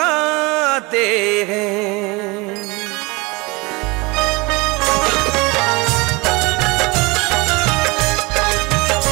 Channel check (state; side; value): quieter; left; 25.3 dB